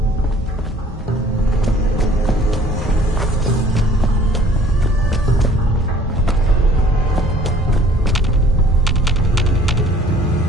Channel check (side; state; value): both; normal; correlation 0.54